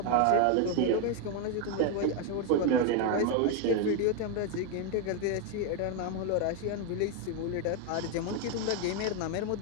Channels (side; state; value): both; different; correlation 0.01